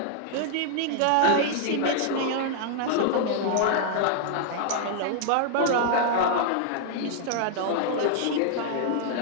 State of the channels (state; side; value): different; both; correlation -0.01